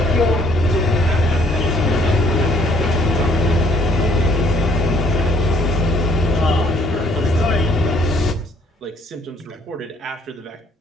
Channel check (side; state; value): both; normal; correlation 0.62